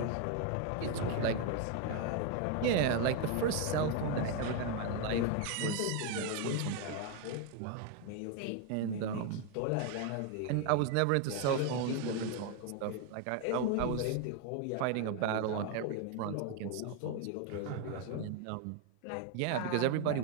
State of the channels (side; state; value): both; different; correlation 0.01